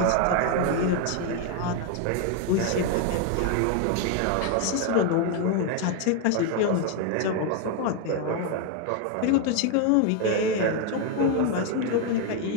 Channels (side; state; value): both; different; correlation 0.01